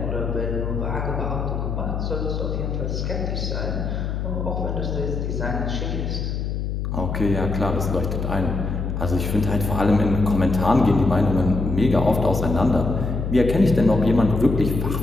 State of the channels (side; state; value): left; noise; hum, 2 dB below the sound